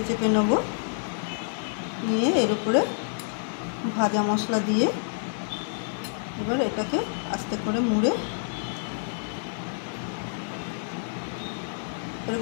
চেপে নেব। নিয়ে এর উপরে ভাজা মশলা দিয়ে এবার এটাকে আস্তে করে মুড়ে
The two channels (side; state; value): right; silent; 59 dB below the other